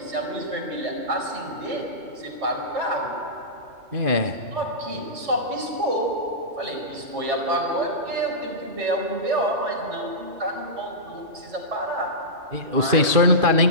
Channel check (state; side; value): late; left; 2.5 ms